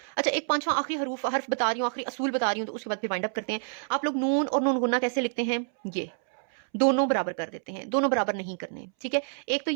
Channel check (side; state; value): left; silent; 59 dB below the other